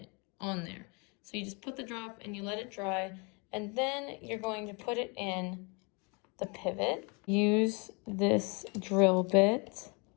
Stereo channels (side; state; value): right; quieter; 31.7 dB